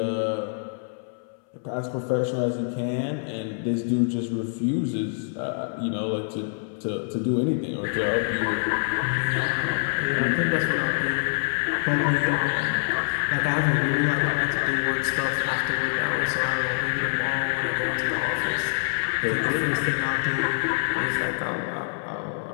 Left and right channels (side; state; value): right; silent; 61 dB below the other